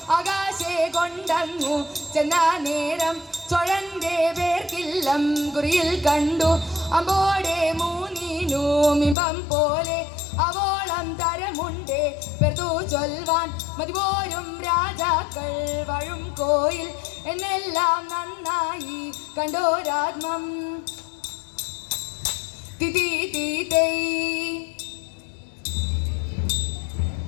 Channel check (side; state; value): right; drops out; at 9.2 s